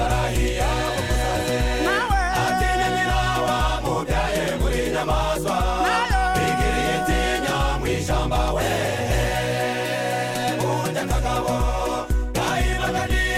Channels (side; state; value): both; identical; correlation 1.00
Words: atinya nyina wamubyaye muri nyamaswa bigiriye itinya mw'ishamba we burya akagabo gahibaga